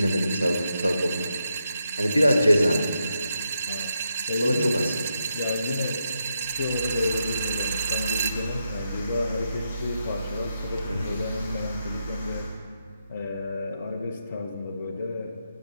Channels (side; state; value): both; inverted; correlation -0.83